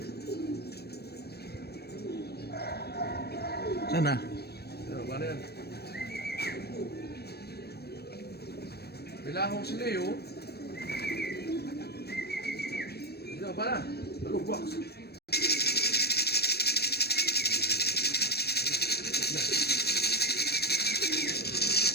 Sana. Ano ba na yan? Kailangan ko si Leo. Ano ba na? Alog, box.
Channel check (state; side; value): late; right; 0.47 ms